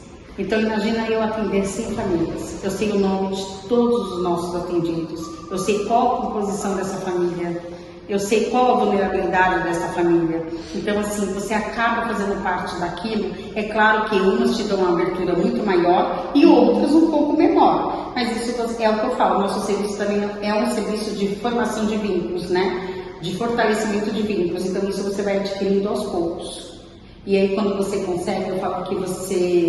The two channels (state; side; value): identical; both; correlation 1.00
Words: Então imagina eu atender 100 famílias, eu sei o nome de todos os nossos atendidos, eu sei qual a composição dessa família, eu sei qual a vulnerabilidade dessa família. Então, assim, você acaba fazendo parte daquilo. É claro que umas te dão uma abertura muito maior e outras um pouco menor. Mas isso é o que eu falo, nosso serviço também é um serviço de formação de vínculos, né? De fortalecimento de vínculos. Então, isso você vai adquirindo aos poucos. E aí, quando você consegue, eu falo que